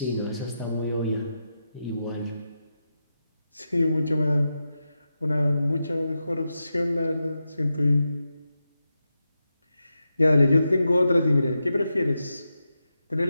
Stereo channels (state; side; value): inverted; both; correlation -0.89